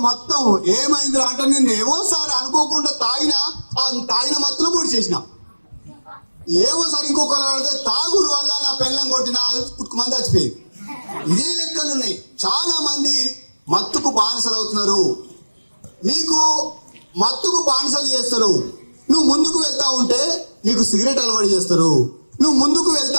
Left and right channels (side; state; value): both; inverted; correlation -1.00